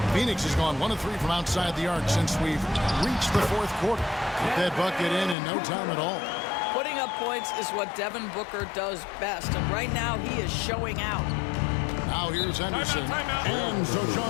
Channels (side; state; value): right; drops out; at 5.4 s